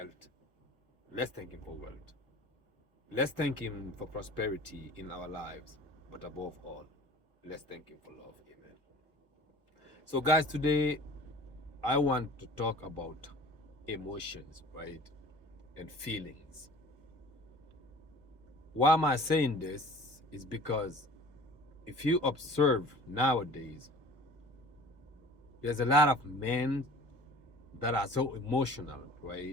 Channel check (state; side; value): normal; both; correlation 0.45